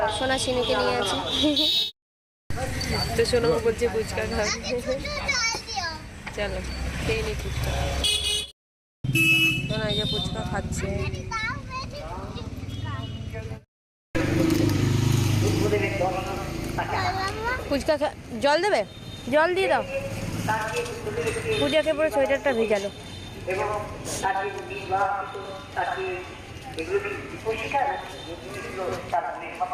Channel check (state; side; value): identical; both; correlation 1.00